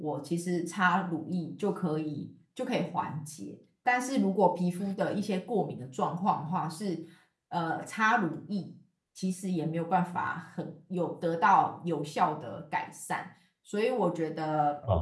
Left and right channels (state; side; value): identical; both; correlation 1.00